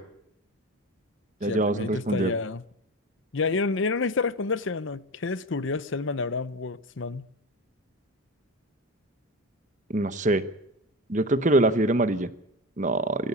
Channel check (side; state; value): both; normal; correlation 0.25